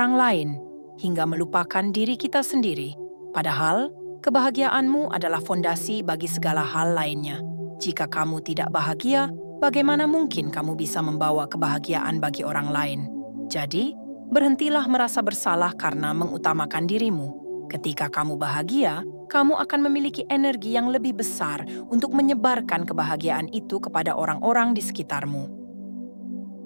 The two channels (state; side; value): inverted; both; correlation -1.00